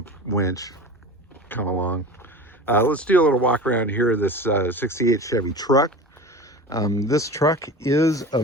winch, come along. Let's do a little walk around here of this 68 Chevy truck. This truck is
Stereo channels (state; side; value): normal; both; correlation 0.32